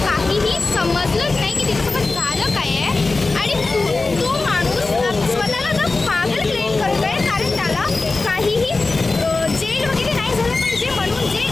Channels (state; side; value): quieter; right; 3.6 dB